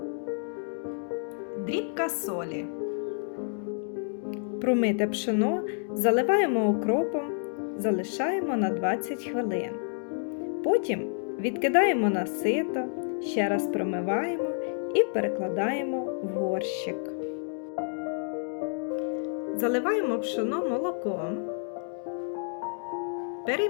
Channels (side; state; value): right; silent; 58 dB below the other